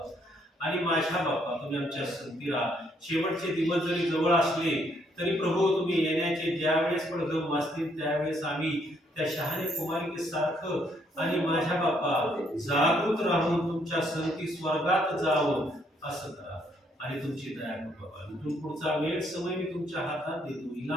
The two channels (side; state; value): both; normal; correlation 0.70